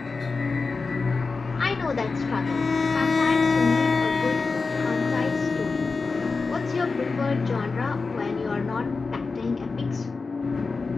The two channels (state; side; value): quieter; right; 4.2 dB